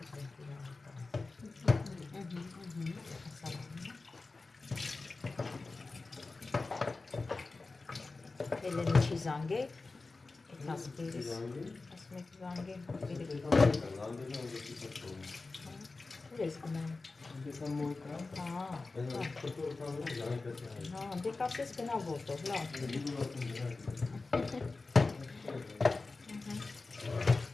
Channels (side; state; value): right; quieter; 3.7 dB